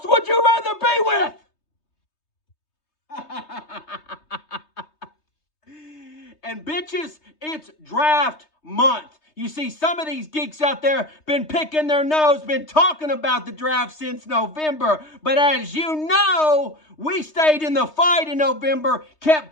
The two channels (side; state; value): right; late; 3.2 ms